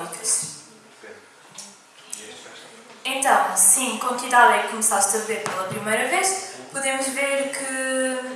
Então, sim, com que idade é que começaste a beber pela primeira vez? Podemos ver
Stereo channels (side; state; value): both; identical; correlation 1.00